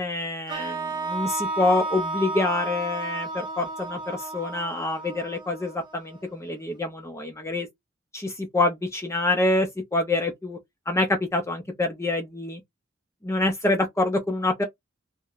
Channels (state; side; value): normal; both; correlation 0.46